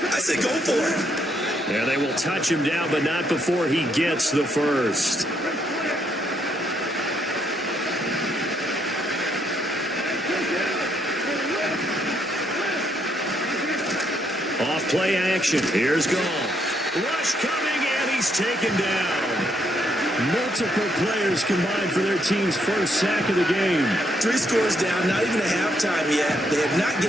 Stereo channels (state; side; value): normal; both; correlation 0.74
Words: I say go for it. Yeah, they will touch him down, but not before he gets the first. Off play action. Here's Goff. Rush coming, and he's taken down. Multiple players combined for their team's first sack of the game. 3 scores down, not even a halftime yet. They are not